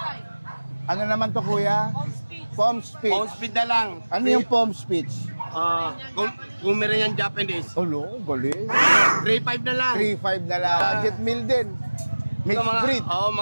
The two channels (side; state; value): both; inverted; correlation -1.00